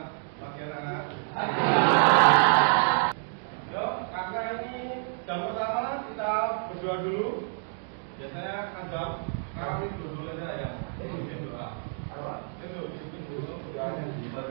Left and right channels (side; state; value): left; silent; 59 dB below the other